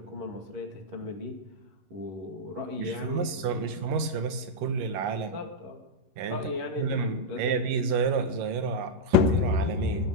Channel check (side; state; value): left; late; 11 ms